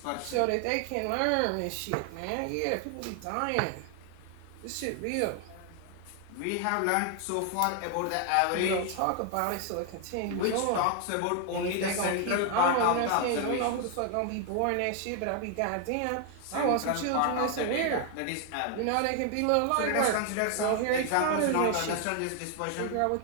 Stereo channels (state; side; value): different; both; correlation 0.00